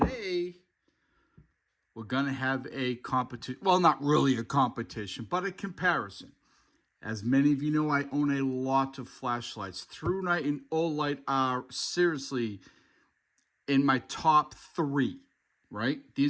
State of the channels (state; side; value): identical; both; correlation 1.00